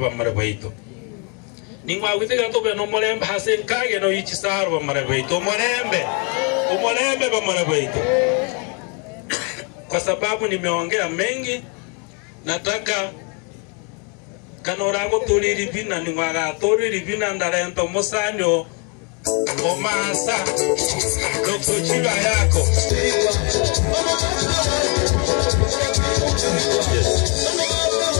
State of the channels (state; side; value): quieter; right; 35.4 dB